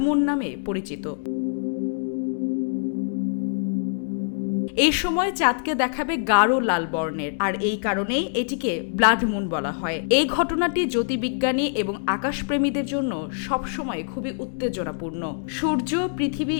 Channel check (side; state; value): right; silent; digital silence